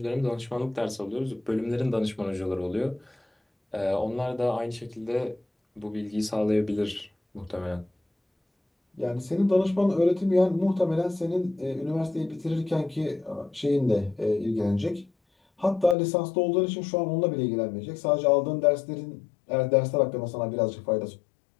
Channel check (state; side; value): drops out; right; at 16.0 s